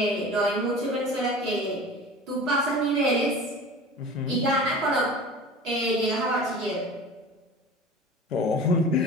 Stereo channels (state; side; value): normal; both; correlation 0.38